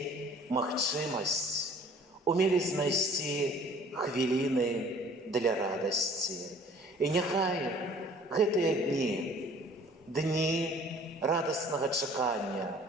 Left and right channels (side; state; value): both; normal; correlation 0.52